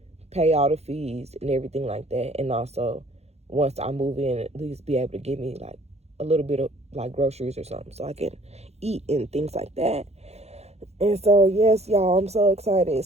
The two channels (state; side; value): late; left; 0.31 ms